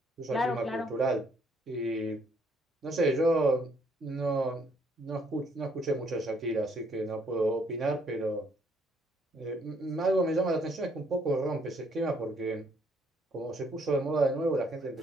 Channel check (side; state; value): both; normal; correlation 0.67